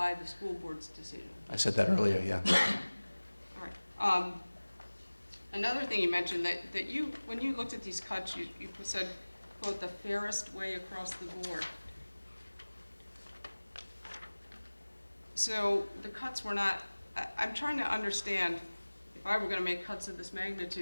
the school board's decision. I said that earlier, yeah. All right. Another thing you mentioned, that you, when you looked at these cuts, you said, quote, "the fairest way across the board." So the cuts were not, I'm trying to understand, if I were going to make cuts of this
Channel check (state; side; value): inverted; both; correlation -1.00